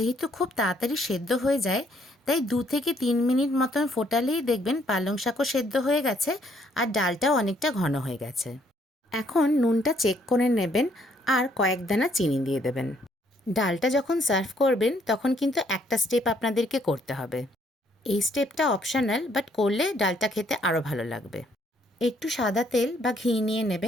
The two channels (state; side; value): normal; both; correlation 0.67